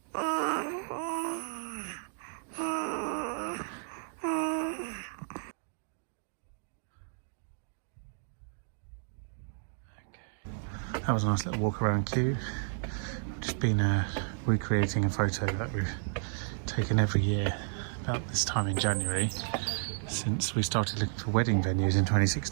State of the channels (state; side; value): silent; left; 56 dB below the other